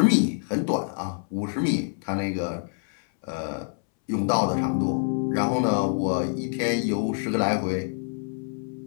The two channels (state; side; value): silent; right; 61 dB below the other